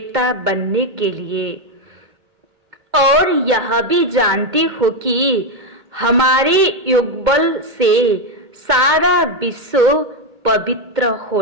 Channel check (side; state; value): left; late; 2.2 ms